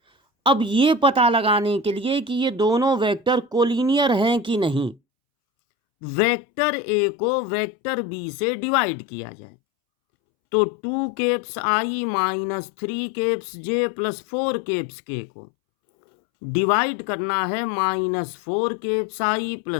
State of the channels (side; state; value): right; drops out; at 5.0 s